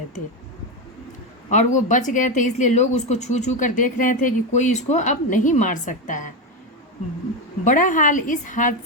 थे और वो बच गए थे, इसलिए लोग उसको छू छू कर देख रहे थे कि कोई इसको अब नहीं मार सकता है। बड़ा हाल इस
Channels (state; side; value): normal; both; correlation 0.11